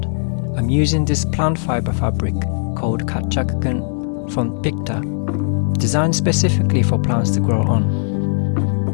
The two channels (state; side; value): silent; right; 60 dB below the other